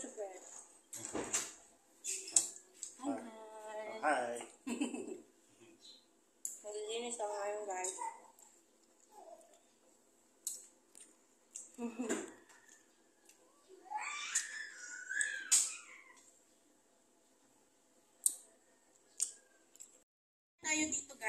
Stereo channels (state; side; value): identical; both; correlation 1.00